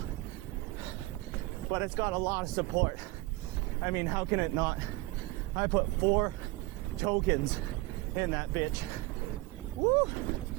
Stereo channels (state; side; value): quieter; left; 20.7 dB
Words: But it's got a lot of support. I mean, how can it not? I put 4 tokens in that bitch. Woo!